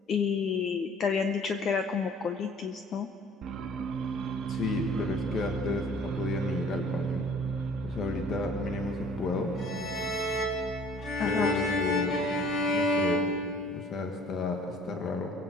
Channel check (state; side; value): normal; both; correlation 0.52